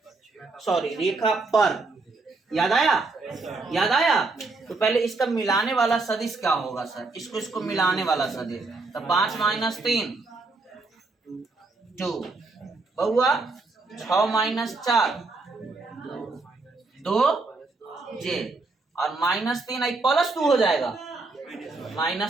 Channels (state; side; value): quieter; left; 3.6 dB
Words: सॉरी रेखा पर, याद आया? याद आया? तो पहले इसका मिलाने वाला सदिश क्या होगा सर? इसको मिलाने वाला सदिश, तो 5 - 3 2, बउआ 6 - 4 2j और -3 +2 हो जाएगा